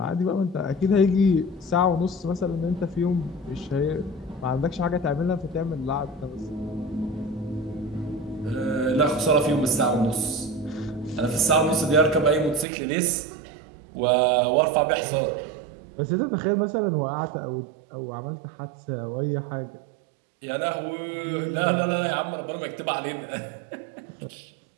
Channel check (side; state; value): left; drops out; at 12.7 s